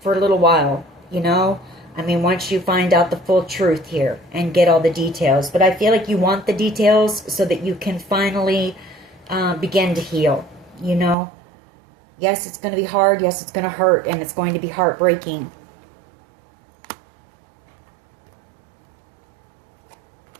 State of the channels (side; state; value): left; drops out; at 11.2 s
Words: a little while, you know. I mean, once you find out the full truth here and get all the details. But I feel like you want the details so that you can finally begin to heal, you know. Yes, it's going to be hard. Yes, it's going to hurt, and it's going to be heartbreaking.